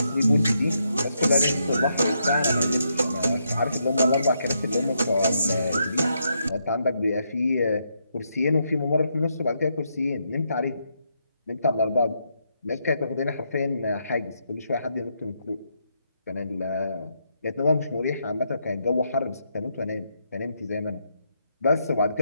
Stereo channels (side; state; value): both; inverted; correlation -0.79